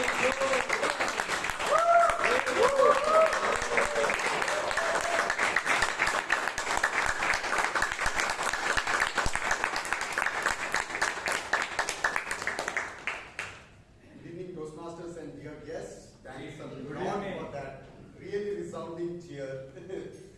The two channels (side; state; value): both; identical; correlation 1.00